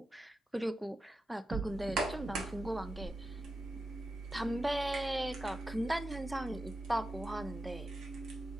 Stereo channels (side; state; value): both; normal; correlation 0.89